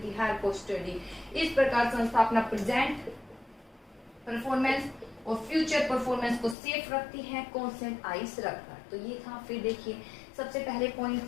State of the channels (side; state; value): right; drops out; at 6.6 s